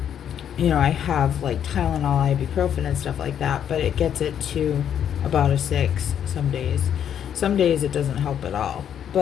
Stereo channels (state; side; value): quieter; right; 9.2 dB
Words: have, like, Tylenol, ibuprofen, and stuff like that, but it gets it to about a 6 some days. Some days it doesn't help at all,